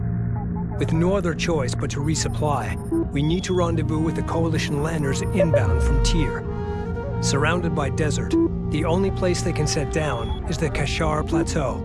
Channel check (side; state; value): both; identical; correlation 1.00